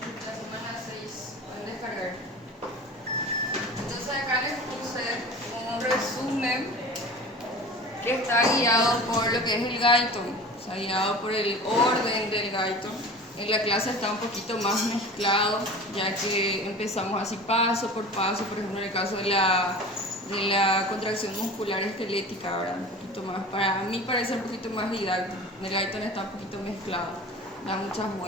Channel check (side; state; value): both; normal; correlation 0.37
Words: La semana 6 pueden descargar. Entonces acá les puse un resumen que está guiado por lo que es el Guyton, o sea, guiado por el orden del Guyton. En la clase está un poquito más mezclado, ya que empezamos así paso por paso, por ejemplo en el caso de la contracción muscular esquelética, ahora un poquito más, para mí parece un poquito más didáctico. En el Guyton está un poquito mezclado, da muchas